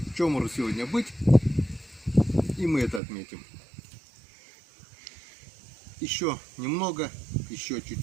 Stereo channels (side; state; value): left; drops out; at 3.0 s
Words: чомору сегодня быть. И мы это отметим. Еще немного, еще